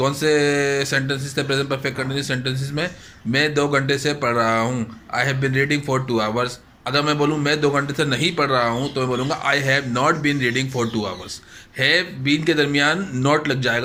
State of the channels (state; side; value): identical; both; correlation 1.00